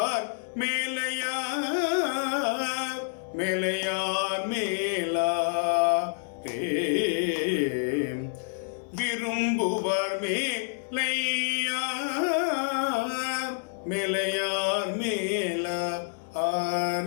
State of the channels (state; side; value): silent; right; digital silence